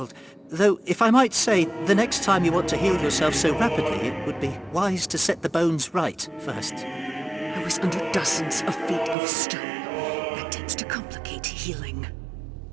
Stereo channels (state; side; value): drops out; left; at 9.2 s